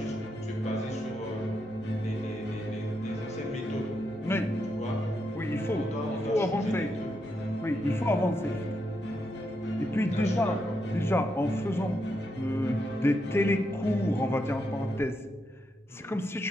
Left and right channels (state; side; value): normal; both; correlation 0.82